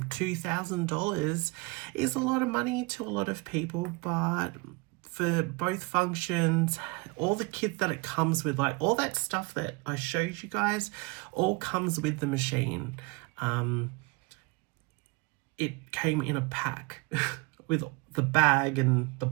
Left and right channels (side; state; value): left; quieter; 26.2 dB